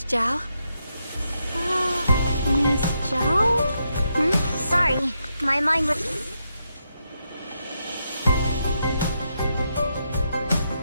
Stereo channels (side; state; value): both; inverted; correlation -0.82